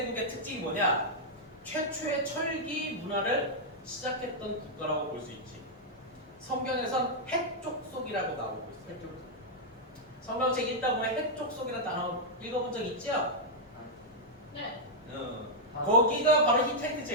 특징이 뭐냐? 최초의 철기 문화를 시작했던 국가라고 볼 수 있지. 성경에선 해족속이라고 나오고 있어요. 해쪽. 성경책 읽다 보면 해족속이라는 단어 읽어본 적 있죠? 네. 거기가 바로 히타이트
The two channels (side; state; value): both; normal; correlation -0.05